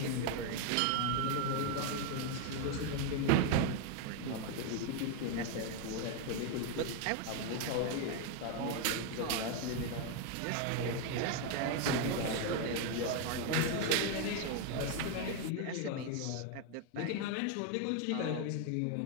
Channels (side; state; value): both; different; correlation 0.01